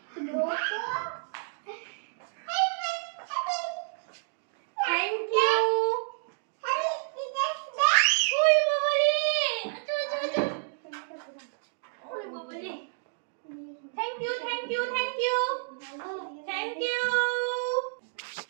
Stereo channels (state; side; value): silent; left; digital silence